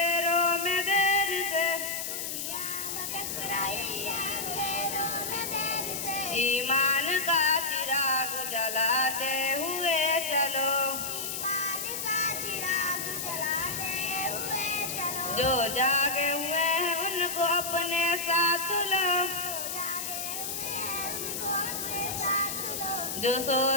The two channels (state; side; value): noise; left; hiss, 4 dB below the sound